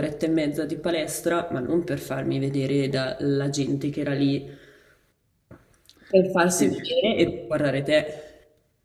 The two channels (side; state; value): both; identical; correlation 1.00